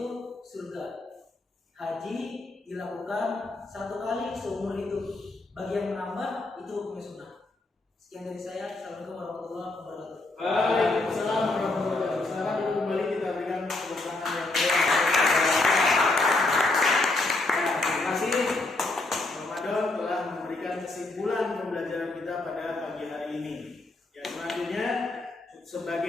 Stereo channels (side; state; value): right; quieter; 3.0 dB